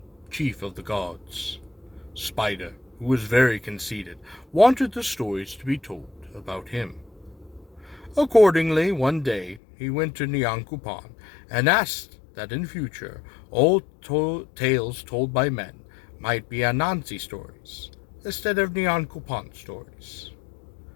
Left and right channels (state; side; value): drops out; right; at 9.6 s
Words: chief of the gods. Spider, who was very conceited, wanted the stories to be told about him. Accordingly, one day he went to Nyan Kupan and asked that in future all tales told by men might be Anansi stories instead of Nyan Kupan stories.